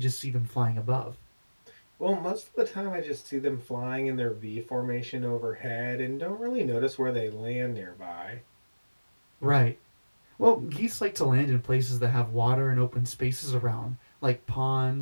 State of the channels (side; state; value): both; inverted; correlation -1.00